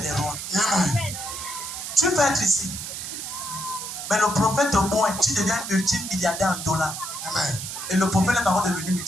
des rois. Amen. Tu peux être ici. Mais le prophète de moins, tu deviens multimilliardaire en dollars. Amen. Et le prophète n'est pas encore devenu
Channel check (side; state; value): right; noise; hiss, 7 dB below the sound